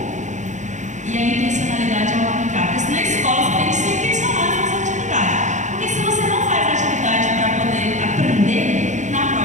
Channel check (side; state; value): left; late; 0.35 ms